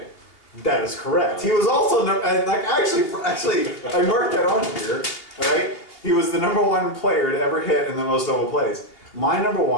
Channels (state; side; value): late; right; 2.8 ms